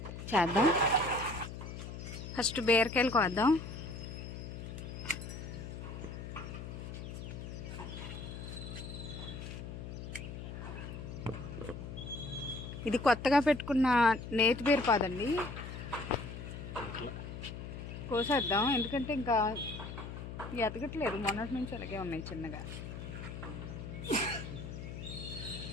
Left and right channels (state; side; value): noise; left; hum, 8 dB below the sound